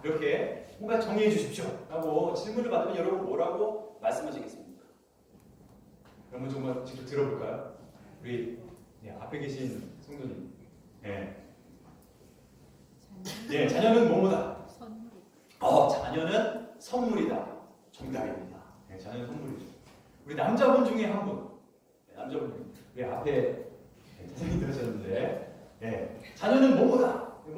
이렇게 뭔가 정의해 주십시오. 라고 질문을 받으면 여러분 뭐라고 말씀하시겠습니까? 여러분 정말 직접 들어볼까요? 우리 앞에 계신 성도님. 네, 자녀는 뭐뭐다? 자녀는 선물이다. 정답입니다. 네, 자녀는 선물이죠. 우리 남자분 중에 한 분. 남자분 중에. 우리 앞에 선생님 들으셨는데, 자녀는 뭐뭐다?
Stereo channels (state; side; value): identical; both; correlation 1.00